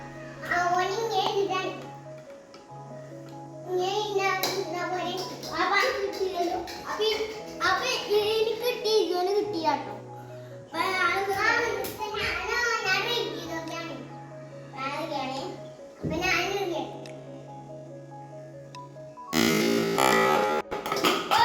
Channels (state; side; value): identical; both; correlation 1.00